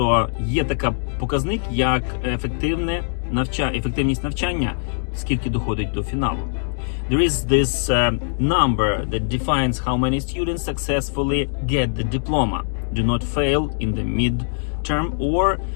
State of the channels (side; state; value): right; silent; digital silence